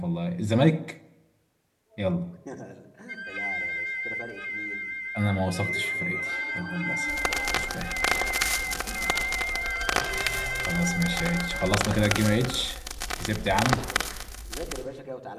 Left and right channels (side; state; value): both; identical; correlation 1.00